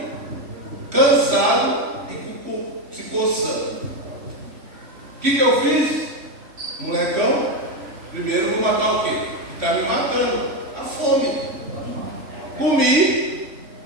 cansado e se coçando. O que eu fiz? Molecão, primeiro vou matar o quê? Está me matando. A fome. Comi,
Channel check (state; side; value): late; left; 3.1 ms